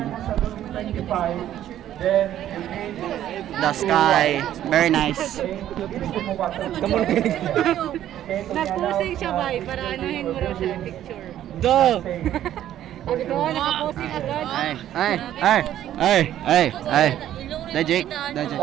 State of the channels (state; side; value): quieter; left; 11.9 dB